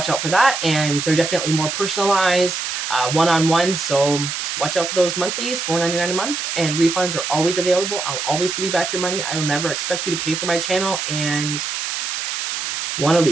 out for that. And they're definitely more personalized, one-on-one. So watch out for those monthlies, $4.99 a month. And refunds are always available. I'll always give you back your money. I will never expect you to pay for my channel. And want to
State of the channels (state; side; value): noise; right; hiss, 3 dB below the sound